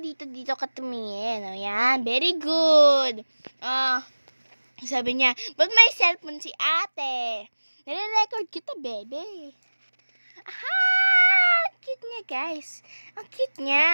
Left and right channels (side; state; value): both; inverted; correlation -1.00